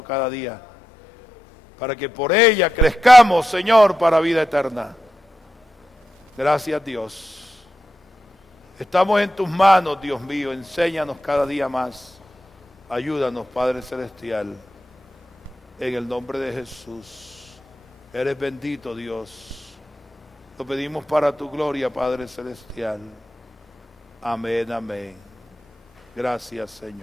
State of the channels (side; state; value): both; normal; correlation 0.88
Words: cada día, para que por ella crezcamos, Señor, para vida eterna. Gracias, Dios. Estamos en tus manos, Dios mío. Enséñanos cada día más. Ayúdanos, Padre Celestial. En el nombre de Jesús. Eres bendito, Dios. Lo pedimos para tu gloria, Padre Celestial. Amén, amén. Gracias,